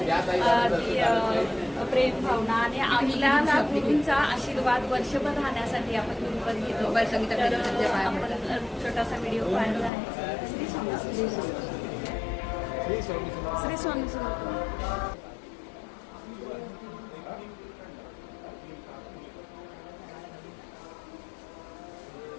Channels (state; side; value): drops out; right; at 9.9 s